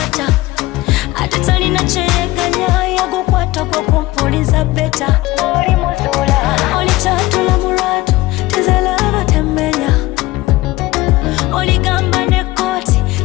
ate talina kyeyeganya yagukwata kwa kumpuliza beta oli muzuula oli kyatula mu lwatu tezalaba temmenya oligamba ne kooti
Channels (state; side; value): quieter; right; 18.6 dB